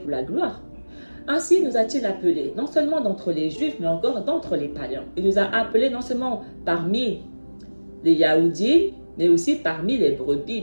la gloire, ainsi nous a-t-il appelés, non seulement d'entre les Juifs, mais encore d'entre les païens. Il nous a appelés non seulement parmi les Yahoudis, mais aussi parmi les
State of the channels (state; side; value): inverted; both; correlation -1.00